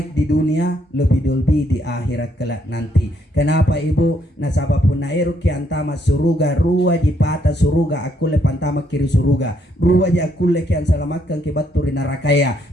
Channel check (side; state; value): both; normal; correlation 0.73